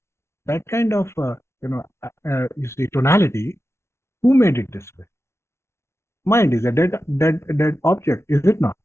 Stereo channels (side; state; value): right; late; 0.13 ms